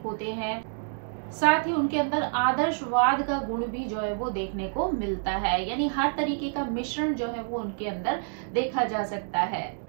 होते हैं, साथ ही उनके अंदर आदर्शवाद का गुण भी जो है वो देखने को मिलता है। यानी हर तरीके का मिश्रण जो है वो उनके अंदर देखा जा सकता है,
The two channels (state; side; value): silent; left; digital silence